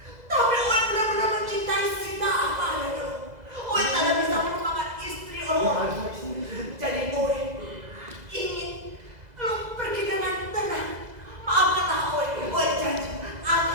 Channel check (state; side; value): late; left; 2.0 ms